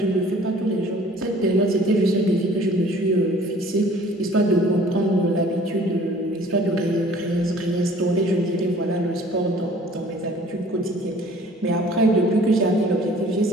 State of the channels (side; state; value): both; normal; correlation 0.52